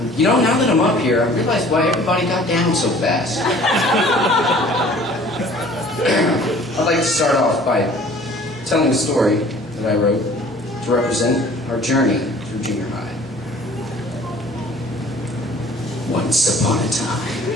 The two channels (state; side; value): normal; both; correlation 0.50